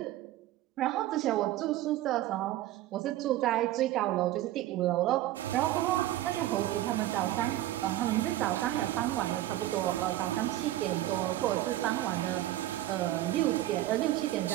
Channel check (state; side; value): quieter; left; 14.8 dB